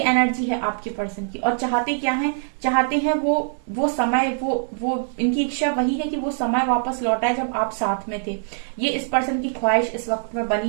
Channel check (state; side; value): silent; left; digital silence